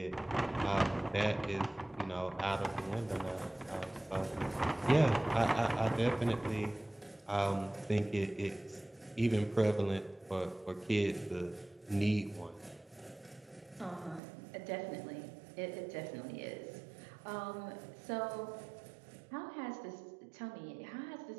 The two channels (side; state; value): left; drops out; at 14.2 s